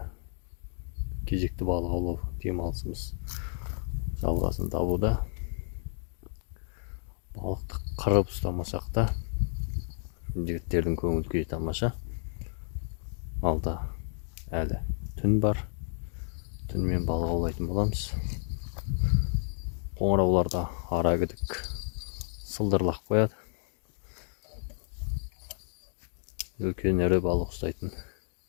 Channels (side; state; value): right; silent; 57 dB below the other